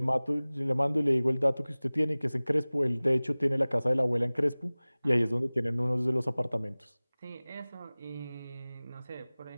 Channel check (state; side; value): inverted; both; correlation -0.99